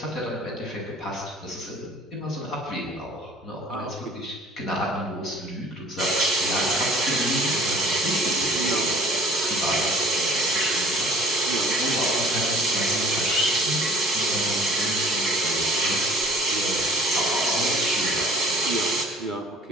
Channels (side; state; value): both; normal; correlation 0.51